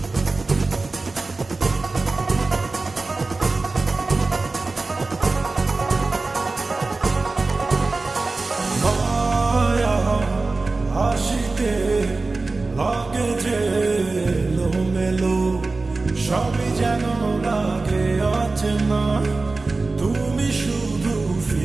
মায়া হাসিতে লাগে যে এলোমেলো, সবই যেন লাগে অচেনা, তুমি শুধু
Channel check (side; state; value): left; quieter; 3.6 dB